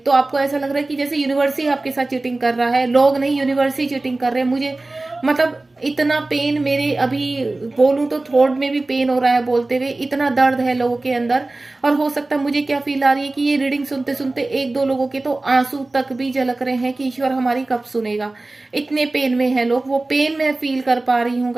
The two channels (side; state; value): left; quieter; 3.0 dB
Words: आपको ऐसा लग रहा है कि जैसे यूनिवर्स ही आपके साथ चीटिंग कर रहा है, लोग नहीं यूनिवर्स ही चीटिंग कर रहे हैं। मुझे मतलब इतना पेन, मेरे अभी बोलूं तो थ्रोट में भी पेन हो रहा है बोलते हुए, इतना दर्द है लोगों के अंदर। और हो सकता है, मुझे क्या फील आ रही है कि ये रीडिंग सुनते सुनते एक दो लोगों के तो आंसू तक भी झलक रहे हैं कि ईश्वर हमारी कब सुनेगा, इतने पेन में है लोग। वो पेन मैं फील कर पा रही हूँ